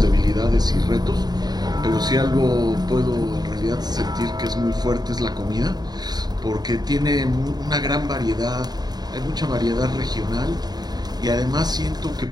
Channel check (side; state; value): left; late; 0.20 ms